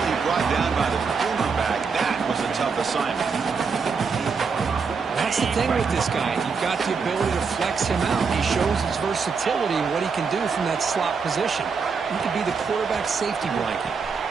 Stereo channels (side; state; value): left; quieter; 5.3 dB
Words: brought down by the cornerback. That was a tough assignment. That's the thing with this guy. You've got the ability to flex him out. He shows his versatility and what he can do from that slot position. He could be the quarterback safety blanket.